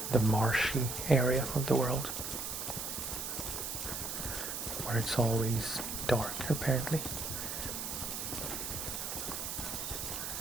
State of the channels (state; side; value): noise; right; hiss, 4 dB below the sound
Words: the marshy area of the world, where it's always dark, apparently.